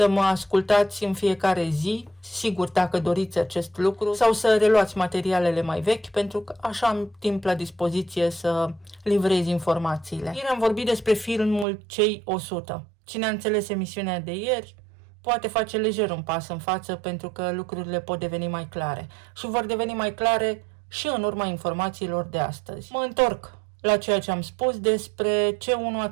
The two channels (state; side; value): drops out; left; at 11.7 s